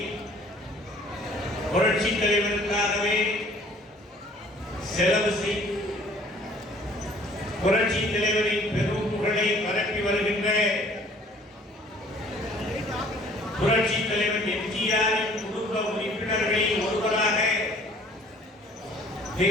புரட்சி தலைவருக்காகவே செலவு செய்து புரட்சி தலைவரின் பெரும் புகழை பரப்பி வருகின்ற புரட்சி தலைவர் எம்ஜிஆரின் குடும்ப உறுப்பினர்களில் ஒருவராக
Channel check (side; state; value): both; normal; correlation 0.55